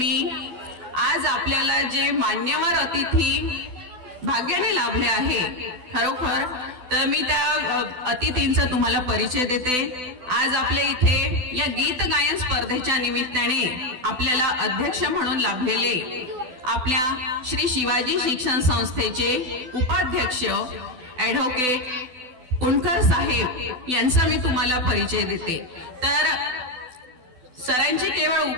आज आपल्याला जे मान्यवर अतिथी भाग्याने लाभले आहे खरोखर, तर मी त्या अतिथींचा तुम्हाला परिचय देते। आज आपल्या इथे या गीत गायन स्पर्धेच्या निमित्ताने आपल्याला अध्यक्ष म्हणून लाभलेले आपल्या श्री शिवाजी शिक्षण संस्थेचे उपाध्यक्ष ॲडव्होकेट कुणकर साहेब यांचा मी तुम्हाला परिचय देते। तर सरांची केवळ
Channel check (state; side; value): late; left; 12 ms